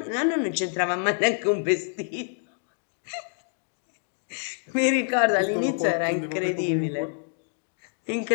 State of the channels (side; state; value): right; silent; digital silence